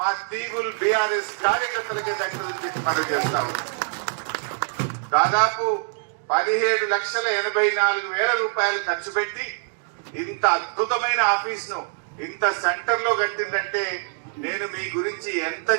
మా తీగుల్ బీఆర్ఎస్ కార్యకర్తలకే దక్కుతుందని చెప్పి మనం చేస్తాము। దాదాపు 17,84,000 రూపాయలు ఖర్చు పెట్టి ఇంత అద్భుతమైన ఆఫీస్ ను ఇంత సెంటర్ లో కట్టిందంటే నేను మీ గురించి ఎంత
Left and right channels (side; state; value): left; silent; digital silence